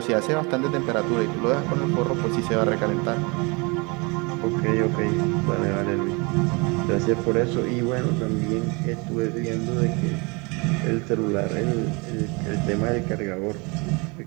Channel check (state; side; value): quieter; left; 28.7 dB